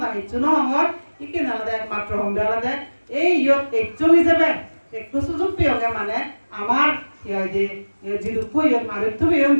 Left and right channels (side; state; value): both; inverted; correlation -1.00